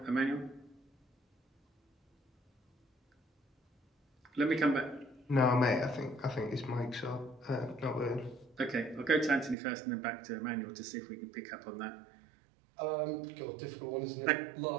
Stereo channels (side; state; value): left; drops out; at 9.6 s